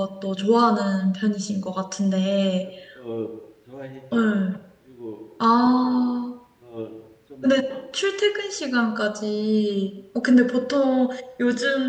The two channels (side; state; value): both; identical; correlation 1.00